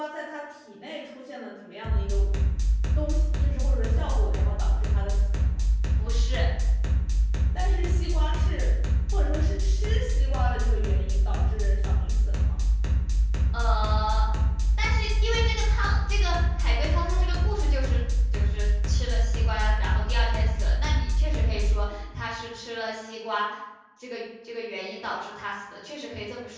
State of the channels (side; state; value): both; identical; correlation 1.00